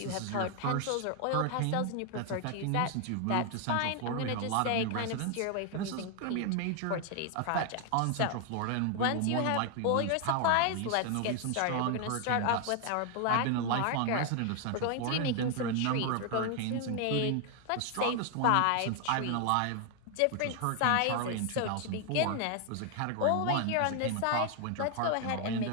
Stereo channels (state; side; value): different; both; correlation 0.00